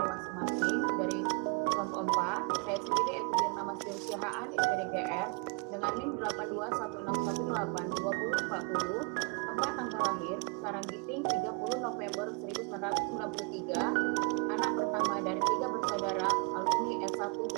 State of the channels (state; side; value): quieter; left; 33.5 dB